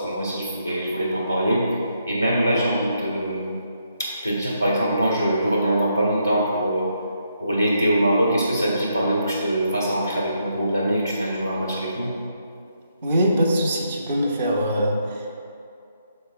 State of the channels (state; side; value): inverted; both; correlation -0.77